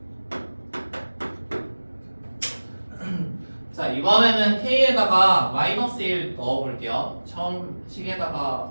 자 이번에는 k에다가 마이너스 1 넣어볼게요. 처음 식에다가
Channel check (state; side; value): inverted; both; correlation -1.00